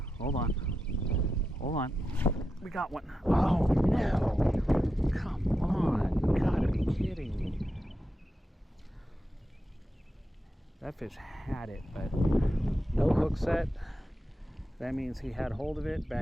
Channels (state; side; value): normal; both; correlation 0.88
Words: Hold on. We got one. Oh no! Come on! You gotta be kidding me. That fish had it, but no hook set. That means he had hold of it